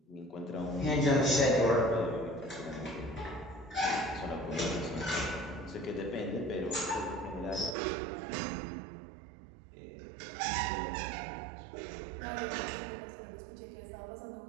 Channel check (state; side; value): drops out; left; at 7.8 s